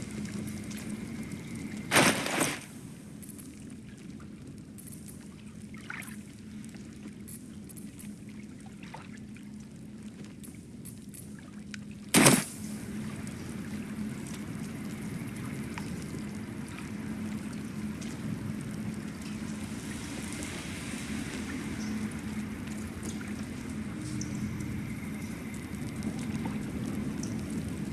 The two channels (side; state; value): both; identical; correlation 1.00